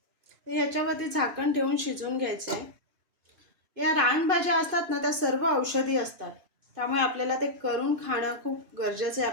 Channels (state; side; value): late; left; 2.5 ms